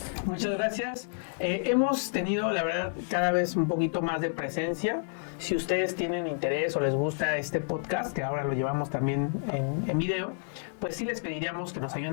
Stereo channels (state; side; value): silent; right; digital silence